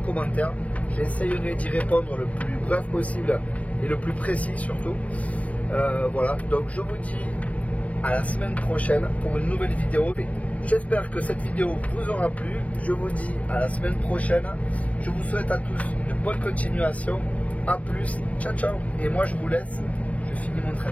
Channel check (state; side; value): late; right; 0.068 ms